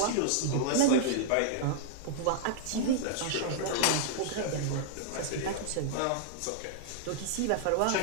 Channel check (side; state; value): both; different; correlation -0.01